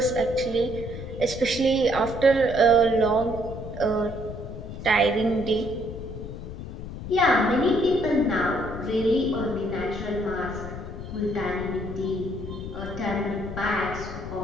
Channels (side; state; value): left; noise; rumble, 9 dB below the sound